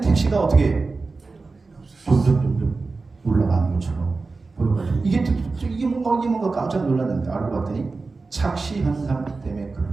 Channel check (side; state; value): left; quieter; 3.9 dB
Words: 어떻게 점점 올라가는 것처럼 보여가지고 이게 뭔가 깜짝 놀랐는데 알고 봤더니 착시 현상 때문에